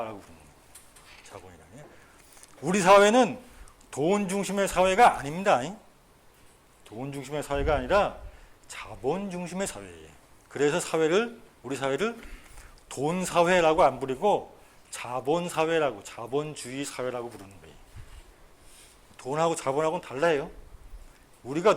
부르는 거예요. 자본이다. 우리 사회는 돈 중심의 사회가 아닙니다. 돈 중심의 사회가 아니라 자본 중심의 사회예요. 그래서 우리 사회를 돈 사회라고 안 부르고 자본 사회라고, 자본주의 사회라고 부르는 거예요. 돈하고 자본하고는 달라요. 우리가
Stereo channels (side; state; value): both; identical; correlation 1.00